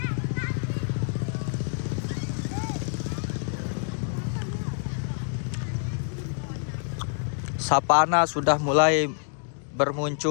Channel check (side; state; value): right; silent; 60 dB below the other